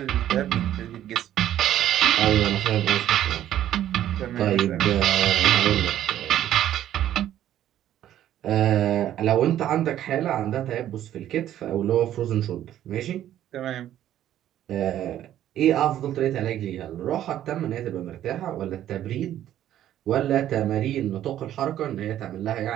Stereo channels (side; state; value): left; quieter; 11.9 dB